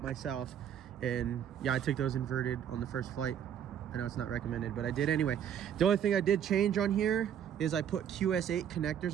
myself. And yeah, I took those inverted on the first flight. I know it's not recommended, but I did anyway. The only thing I did change on here is I put QS8 connectors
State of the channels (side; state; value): left; quieter; 9.2 dB